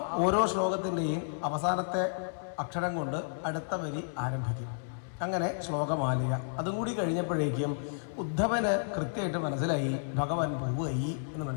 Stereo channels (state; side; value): silent; right; digital silence